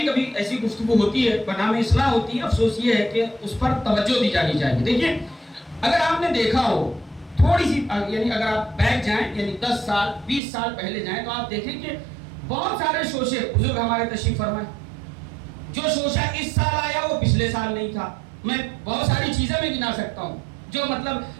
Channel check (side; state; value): left; drops out; at 10.4 s